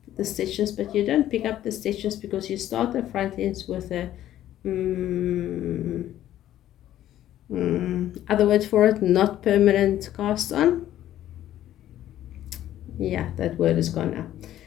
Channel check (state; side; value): quieter; right; 12.6 dB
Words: stitches, but you don't pick up the stitches because you start the front ends with a other word for it, not permanent cast on. Yeah, that word is gone